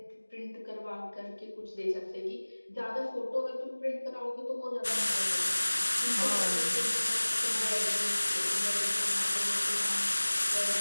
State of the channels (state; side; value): inverted; both; correlation -1.00